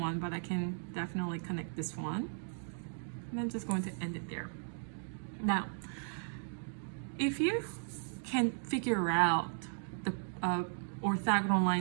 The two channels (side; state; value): left; silent; digital silence